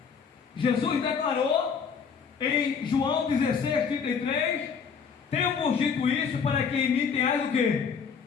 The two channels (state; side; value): quieter; right; 6.3 dB